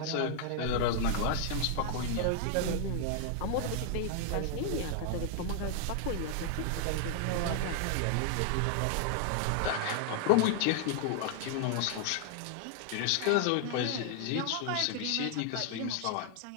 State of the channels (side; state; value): both; different; correlation 0.00